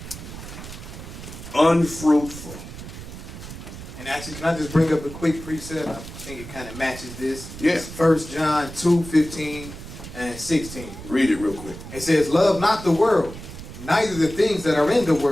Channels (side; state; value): right; noise; rumble, 12 dB below the sound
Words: Unfruitful. And actually, can I just bring up a quick precept? I think it kind of matches this. Yeah. It's 1 John 2, 15 and 16. Read it real quick. It says, love not the world, neither the things that are in the